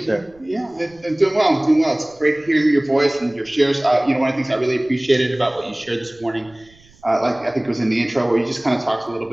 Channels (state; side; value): noise; right; rumble, 29 dB below the sound